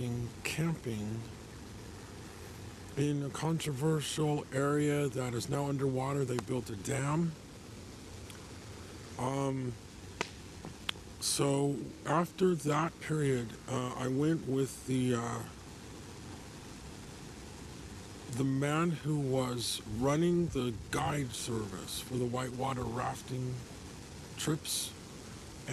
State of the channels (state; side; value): identical; both; correlation 1.00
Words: camping in a controversial area that is now underwater. They built a dam. Um, so after that period, I went with the man who was running the guide service for the whitewater rafting trips,